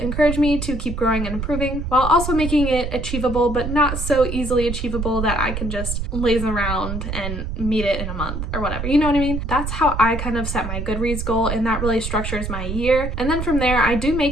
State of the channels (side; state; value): right; noise; rumble, 4 dB below the sound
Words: me to keep growing and improving, while also making it achievable, but not so easily achievable that I can just laze around and meet it in a month or whatever, you know what I mean? That's how I kind of set my Goodreads goal, and that really structures my year. And then from there, I do